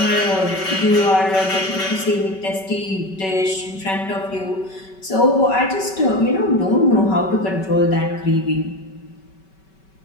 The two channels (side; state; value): right; late; 5.2 ms